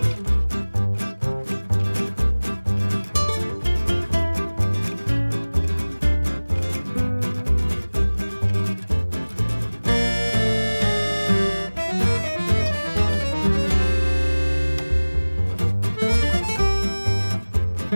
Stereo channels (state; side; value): inverted; both; correlation -1.00